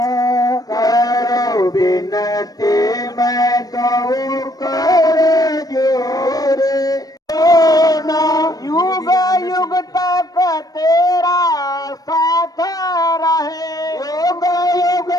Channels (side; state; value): right; late; 0.18 ms